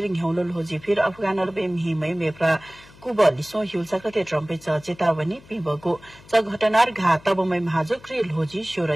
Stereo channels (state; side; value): noise; left; hum, 24 dB below the sound